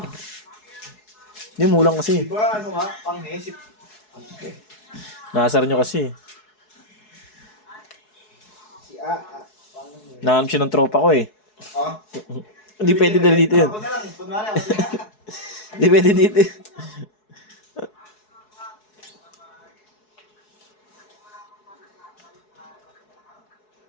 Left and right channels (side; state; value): right; late; 4.7 ms